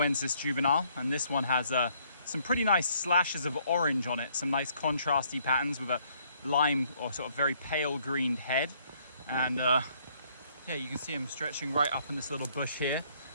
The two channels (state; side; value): inverted; both; correlation -0.66